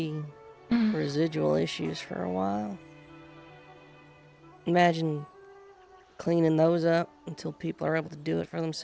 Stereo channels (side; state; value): both; identical; correlation 1.00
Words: residual issues for a while. Imagine cleaning those up until people are able to do it for